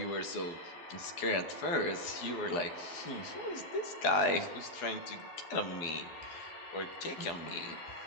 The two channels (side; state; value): right; late; 12 ms